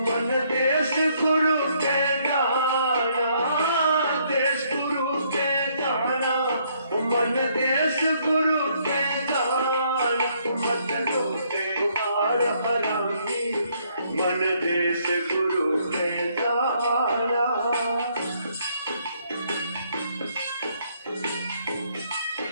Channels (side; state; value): both; inverted; correlation -0.69